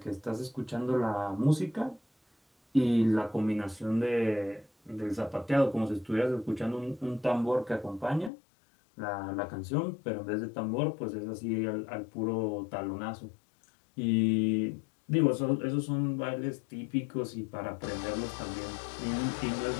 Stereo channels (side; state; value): right; drops out; at 8.3 s